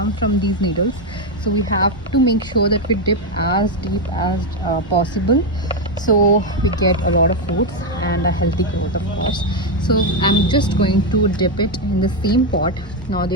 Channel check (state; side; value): normal; both; correlation 0.05